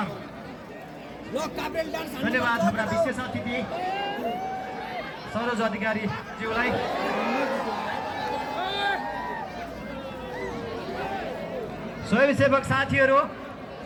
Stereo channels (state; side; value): identical; both; correlation 1.00